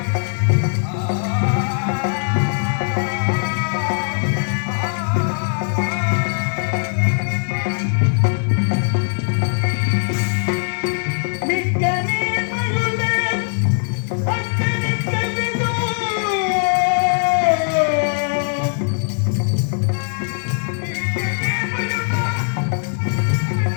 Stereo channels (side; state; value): right; silent; 66 dB below the other